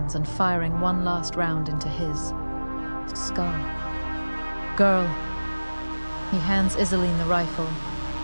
and firing one last round into his skull. "Girl." He hands Iseline the rifle.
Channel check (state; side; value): inverted; both; correlation -1.00